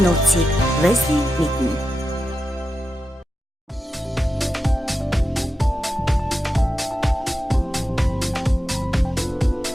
нууцыг Vaseline мэднэ.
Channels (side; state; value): both; normal; correlation 0.90